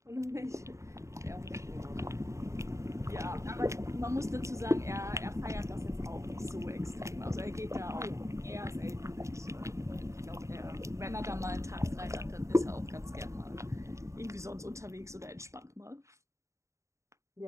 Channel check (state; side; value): late; left; 0.14 ms